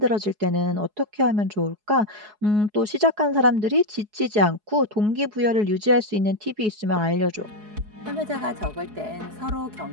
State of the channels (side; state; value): left; late; 4.7 ms